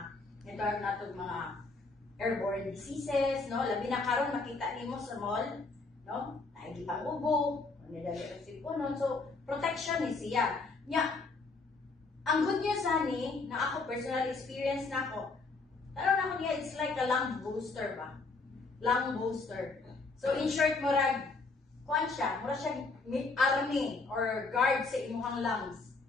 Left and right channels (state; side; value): quieter; right; 3.8 dB